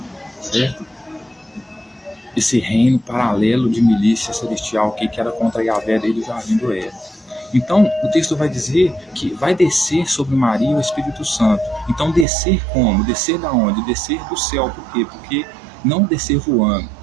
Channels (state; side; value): drops out; left; at 12.2 s